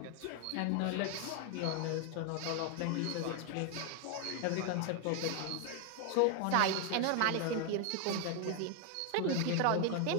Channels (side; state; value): both; different; correlation 0.01